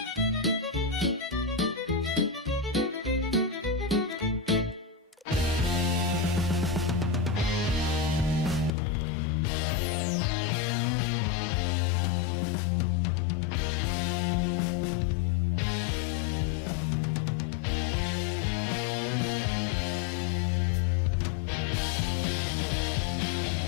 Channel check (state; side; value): drops out; right; at 8.8 s